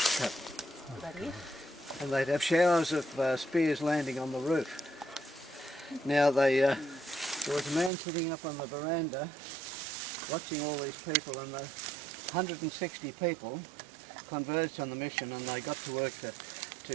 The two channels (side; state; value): left; drops out; at 7.9 s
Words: cut. And they'd have showers of spears landing on the roof. Now there was a man sitting up on the veranda watching all these people, and the 160 people converged on the mission, and they got to work to